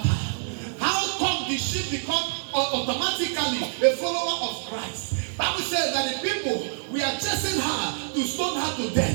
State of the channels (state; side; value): silent; left; 61 dB below the other